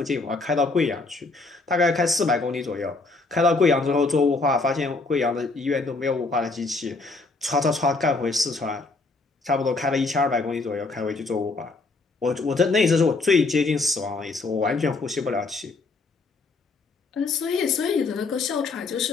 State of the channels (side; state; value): right; quieter; 3.6 dB